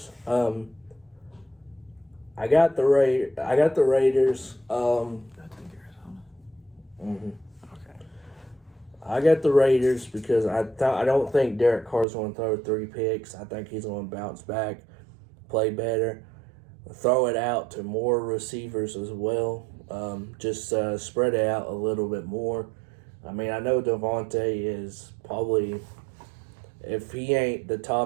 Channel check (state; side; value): drops out; left; at 12.1 s